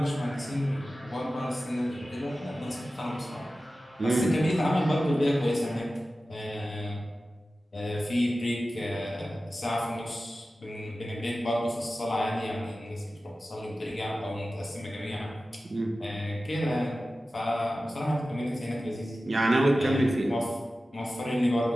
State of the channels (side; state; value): both; normal; correlation 0.95